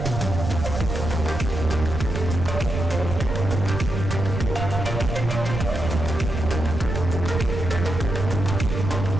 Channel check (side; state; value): right; noise; rumble, 4 dB below the sound